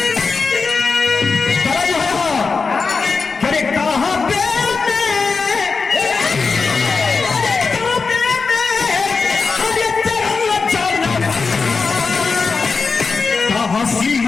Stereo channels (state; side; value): quieter; right; 4.7 dB